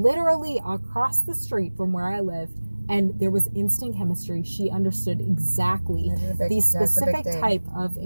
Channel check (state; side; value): inverted; both; correlation -1.00